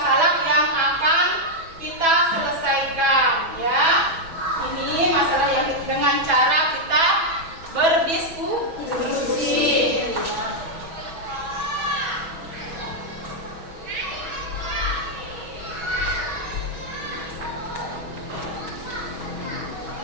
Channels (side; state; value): left; late; 6.1 ms